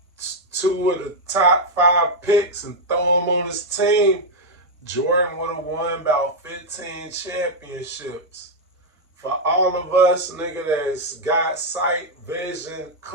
two of the top 5 picks and throw him on his team, Jordan would have won about 15 championships. For all of us, nigga, that's got sight, vision,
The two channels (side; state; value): both; normal; correlation -0.01